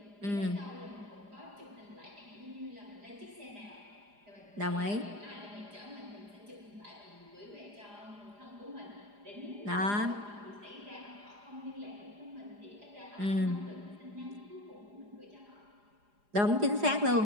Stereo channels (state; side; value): late; left; 4.9 ms